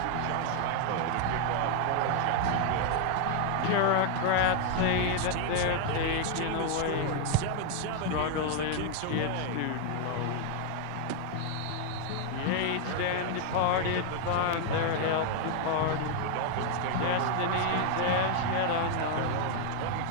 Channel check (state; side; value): different; both; correlation 0.00